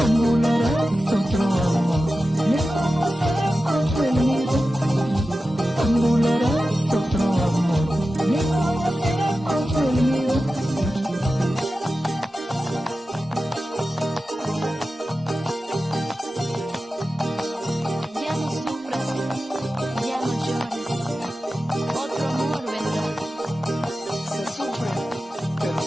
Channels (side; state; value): both; normal; correlation 0.93